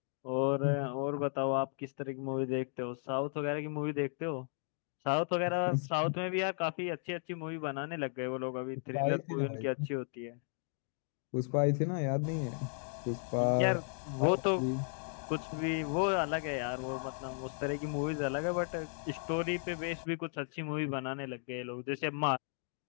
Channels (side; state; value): right; silent; 54 dB below the other